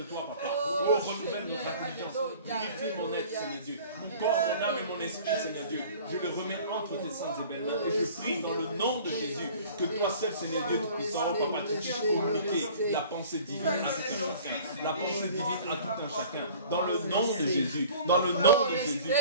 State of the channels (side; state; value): both; inverted; correlation -0.47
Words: Papa. Oh, renouvelle notre intelligence. Purifie mon être, Seigneur Dieu. Mon corps, mon âme et mon esprit, Seigneur Dieu. Je le remets entre tes saintes et belles mains. Et je prie dans le nom de Jésus que toi seul, Seigneur Dieu Tout-Puissant, Papa, tu puisses communiquer la pensée divine à tout un chacun. La pensée divine à tout un chacun. Dans le nom de Jésus. Dans le nom de Jésus,